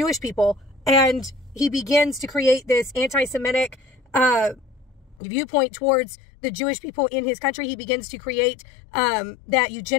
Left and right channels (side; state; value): right; drops out; at 5.2 s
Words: people, and he begins to create this anti-Semitic viewpoint towards the Jewish people in his country. He begins to create that